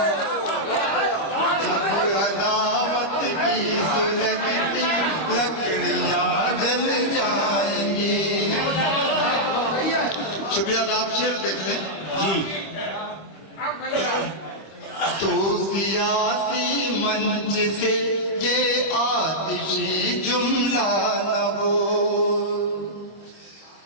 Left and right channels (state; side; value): late; right; 25 ms